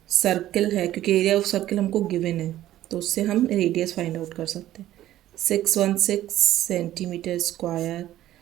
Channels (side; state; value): left; quieter; 13.6 dB